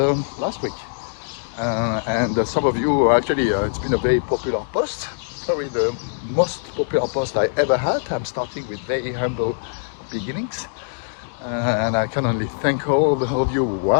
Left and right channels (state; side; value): silent; right; digital silence